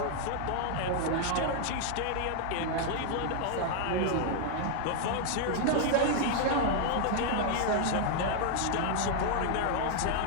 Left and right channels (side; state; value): both; different; correlation 0.00